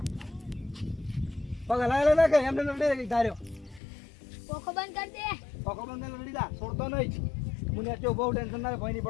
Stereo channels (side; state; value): right; drops out; at 3.8 s